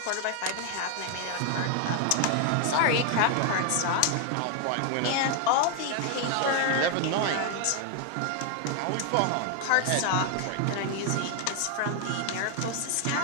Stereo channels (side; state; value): both; different; correlation 0.00